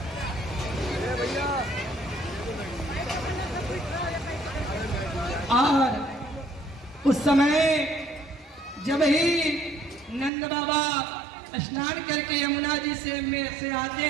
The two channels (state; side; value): drops out; left; at 10.3 s